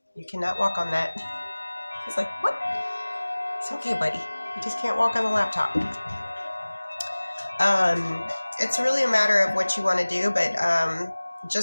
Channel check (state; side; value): inverted; both; correlation -1.00